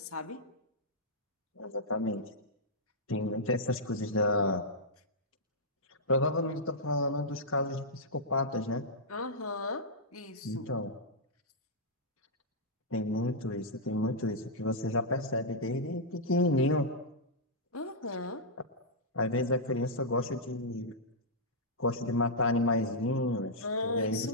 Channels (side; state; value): both; normal; correlation -0.09